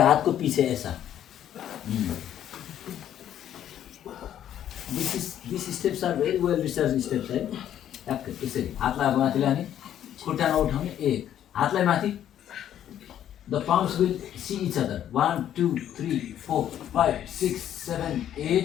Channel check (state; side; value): quieter; right; 10.8 dB